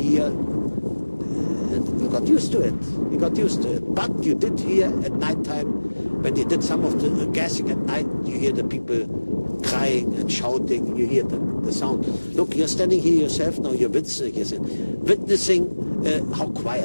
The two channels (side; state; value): both; inverted; correlation -1.00